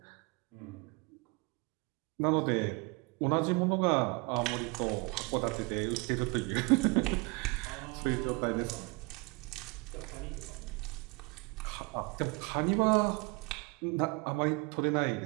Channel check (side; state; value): left; quieter; 27.6 dB